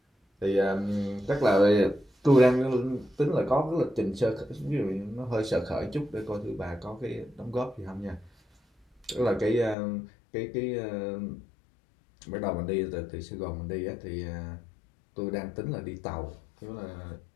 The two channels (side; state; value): right; drops out; at 9.8 s